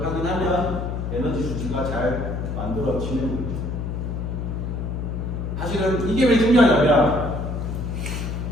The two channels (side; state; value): left; noise; hum, 3 dB below the sound